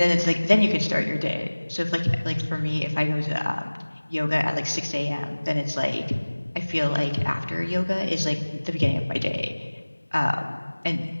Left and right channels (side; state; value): both; inverted; correlation -1.00